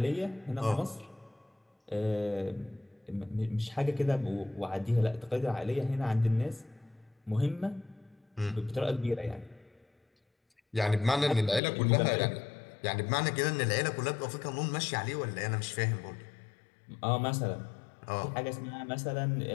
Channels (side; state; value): right; drops out; at 11.6 s